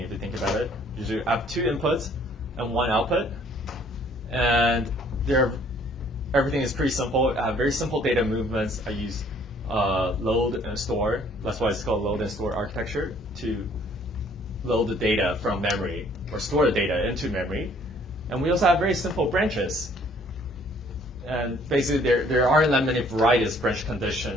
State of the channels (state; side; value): normal; both; correlation 0.59